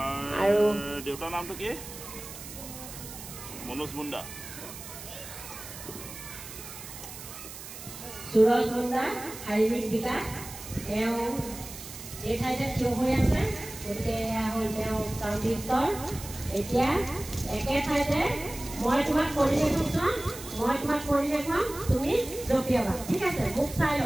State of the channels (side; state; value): right; noise; hiss, 12 dB below the sound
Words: আৰু দেউতাৰ নামটো কি? মনোজ মুণ্ডা। সুৰজ মুণ্ডা শাৰীৰিক বিকাশ। তেওঁ এই ঠাইতে থিয় হৈ আছে, গতিকে এয়া হ'ল তেওঁ প্ৰাৰম্ভিক স্তৰ। এতিয়া একে ঠাইতে মই তোমাক কৰি দেখুৱাম, তুমি জঁপিয়াবা। ঠিক আছে? মোক চাই